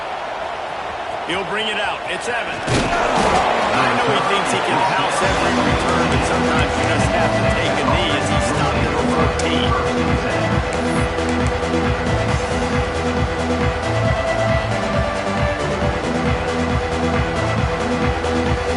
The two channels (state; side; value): identical; both; correlation 1.00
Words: He'll bring it out. It's Evans. I know he thinks he can house every return, but sometimes you just have to take a knee as he stopped at the 14.